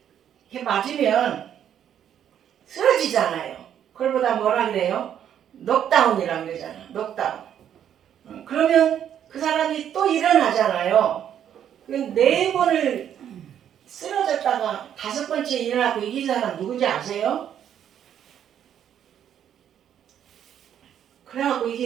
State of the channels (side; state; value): left; quieter; 9.7 dB